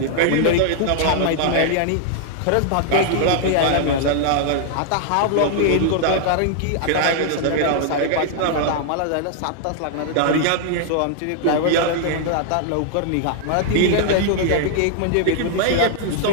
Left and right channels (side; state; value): both; different; correlation -0.01